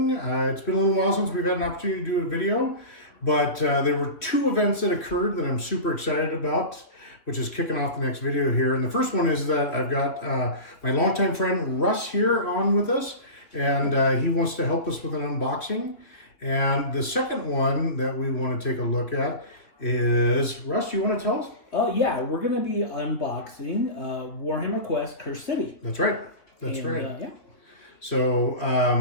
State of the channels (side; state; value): right; late; 3.1 ms